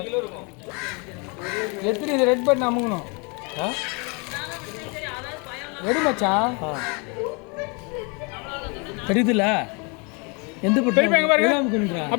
எத்தனை இது ரெட் பட்டன் அமுங்கணும் எடு மச்சான் தெரியுதுல்ல எந்த பட்டன்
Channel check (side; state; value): right; quieter; 32.0 dB